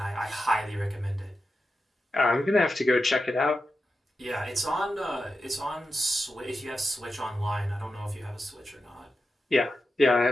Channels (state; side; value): normal; both; correlation 0.90